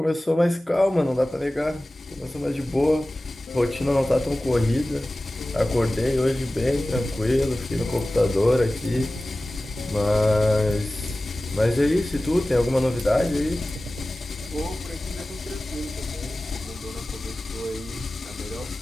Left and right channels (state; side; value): normal; both; correlation 0.96